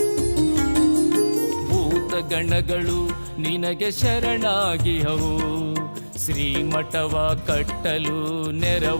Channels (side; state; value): both; inverted; correlation -1.00